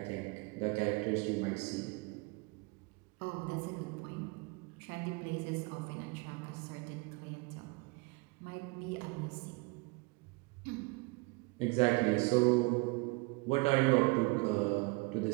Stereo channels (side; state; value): left; quieter; 27.5 dB